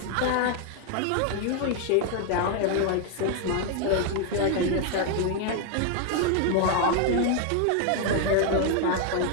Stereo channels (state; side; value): different; both; correlation 0.01